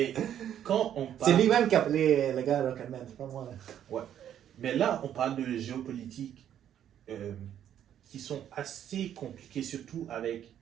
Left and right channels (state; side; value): quieter; left; 10.3 dB